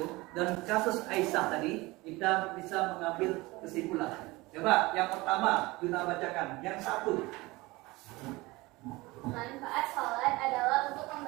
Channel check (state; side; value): quieter; left; 21.8 dB